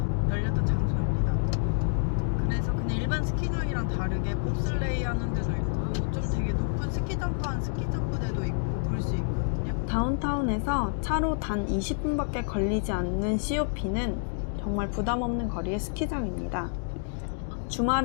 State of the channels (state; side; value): silent; right; digital silence